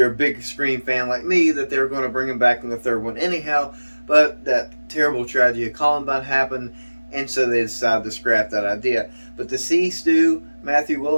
a big Scream fan like me, that they're going to bring him back in the third one anyhow. But that terrible tragedy of Columbine happened, and so they decided to scrap that idea. But to see Stu, Mathew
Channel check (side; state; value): both; inverted; correlation -1.00